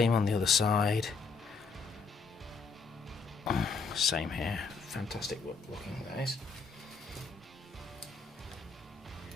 on the other side. Same here. Fantastic looking, that is.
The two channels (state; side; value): quieter; right; 4.7 dB